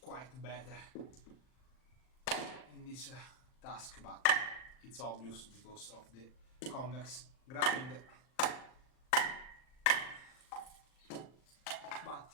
better in this task, but it's obvious because of the convex grind.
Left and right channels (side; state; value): right; late; 39 ms